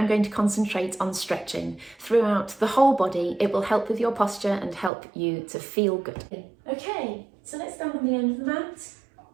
going to concentrate on stretching throughout the whole body. It will help with your posture and help you to feel good. Okay, so let's stand on the end of the mat.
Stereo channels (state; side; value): drops out; left; at 4.9 s